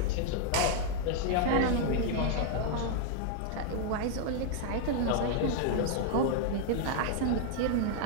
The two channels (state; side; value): different; both; correlation 0.00